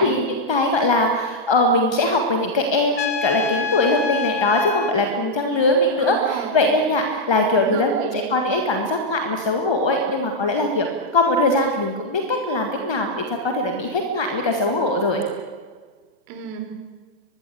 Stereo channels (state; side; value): late; right; 1.3 ms